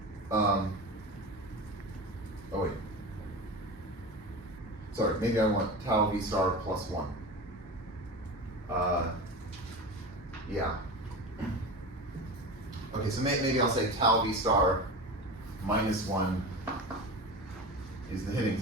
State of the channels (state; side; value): normal; both; correlation 0.28